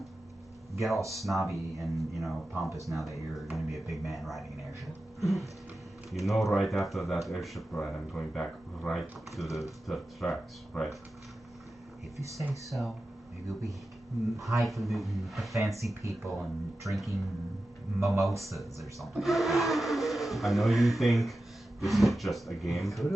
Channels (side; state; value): both; normal; correlation 0.93